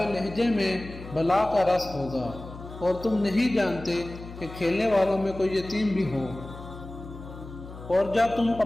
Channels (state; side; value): noise; left; hum, 14 dB below the sound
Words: لہجے میں بلا کا رس ہوگا، اور تم نہیں جانتے کہ کھیلنے والوں میں کوئی یتیم بھی ہو، اور جب تم